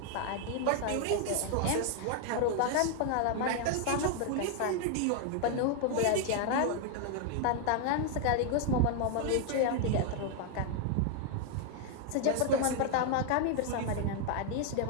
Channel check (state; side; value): different; both; correlation 0.00